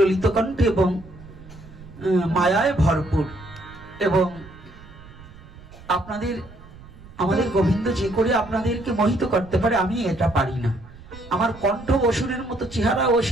কণ্ঠে এবং মায়ায় ভরপুর। এবং আপনাদের আমাদের গোবিন্দ যে করে আপনাদেরকে মোহিত করতে পারে, আমি এটা পারি না। আমার কণ্ঠ অসুরের মতো, চেহারা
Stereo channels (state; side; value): noise; right; rumble, 19 dB below the sound